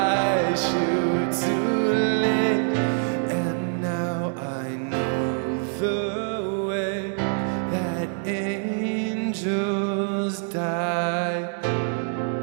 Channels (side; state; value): left; silent; digital silence